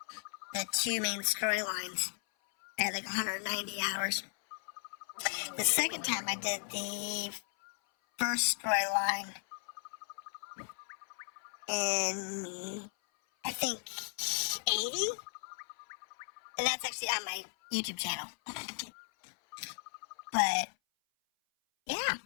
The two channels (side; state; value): right; silent; 54 dB below the other